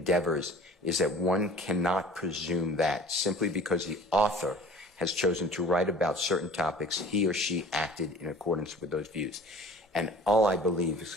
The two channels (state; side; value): normal; both; correlation 0.44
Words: is that one cannot presume that simply because the author has chosen to write about certain topics, he or she acted in accordance with those views. And all I believe is